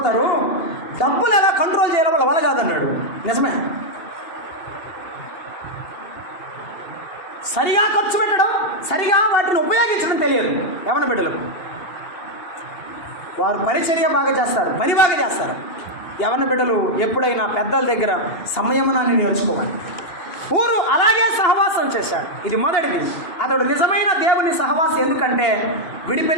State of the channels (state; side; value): late; right; 2.8 ms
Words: డబ్బులు ఎలా కంట్రోల్ చేయాలో వాళ్ళ వల్ల కాదన్నాడు. నిజమే. సరిగా ఖర్చు పెట్టడం, సరిగా వాటిని ఉపయోగించడం తెలియదు యవన బిడ్డలకు. వారు పరిచర్య బాగా చేస్తారు, పని బాగా చేస్తారు. యవన బిడ్డలు ఎప్పుడైనా పెద్దల దగ్గర సంయమనాన్ని నేర్చుకోవాలి. ఊరు అలాగే సహవాసం చేశాడు. ఇది మొదటిది. అతడు నిజమైన దేవుని సహవాసం. ఎందుకంటే